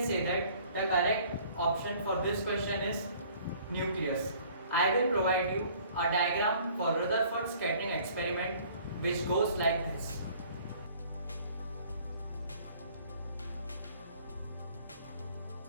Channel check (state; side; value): inverted; both; correlation -0.54